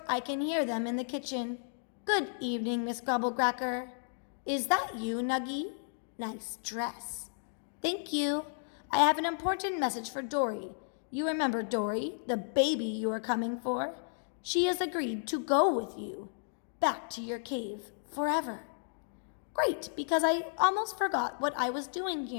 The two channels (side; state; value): right; silent; digital silence